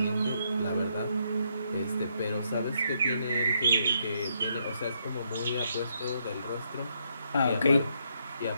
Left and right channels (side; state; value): both; inverted; correlation -0.76